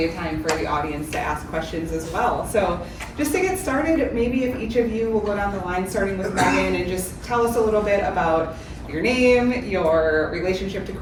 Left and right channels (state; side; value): identical; both; correlation 1.00